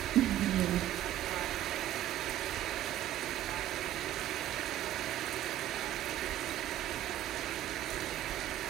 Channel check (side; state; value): left; quieter; 12.9 dB